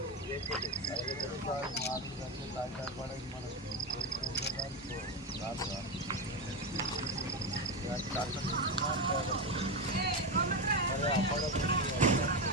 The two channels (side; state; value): both; normal; correlation 0.13